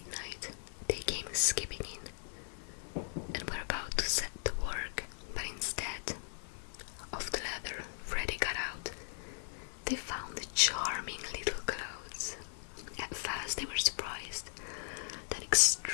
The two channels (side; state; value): right; silent; digital silence